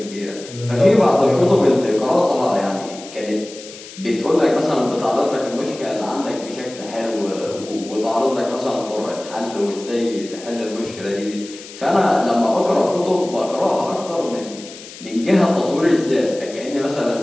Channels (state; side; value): noise; left; hiss, 16 dB below the sound